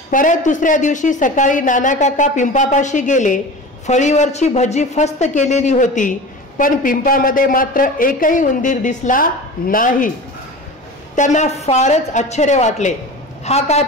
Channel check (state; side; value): normal; both; correlation 0.33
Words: परत दुसऱ्या दिवशी सकाळी नाना काका पिंपापाशी गेले. फळीवरची भजी फस्त केलेली होती, पण पिंपामध्ये मात्र एकही उंदीर दिसला नाही. त्यांना फारच आश्चर्य वाटले. हा काय